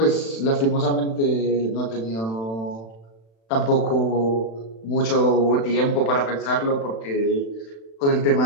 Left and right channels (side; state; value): right; late; 36 ms